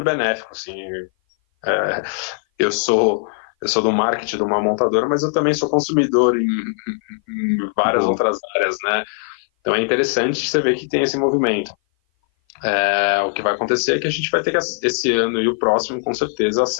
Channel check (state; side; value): silent; right; 58 dB below the other